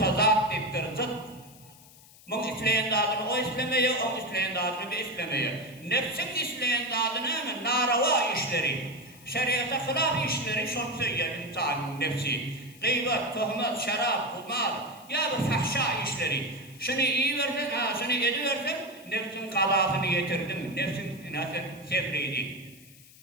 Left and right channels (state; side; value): noise; left; hiss, 23 dB below the sound